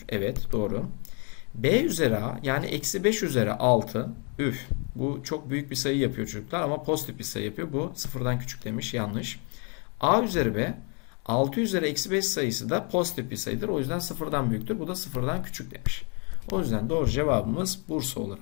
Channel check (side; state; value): right; quieter; 35.9 dB